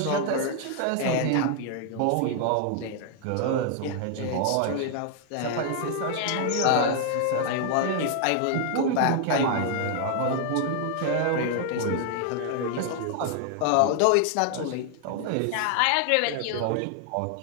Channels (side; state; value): both; different; correlation 0.00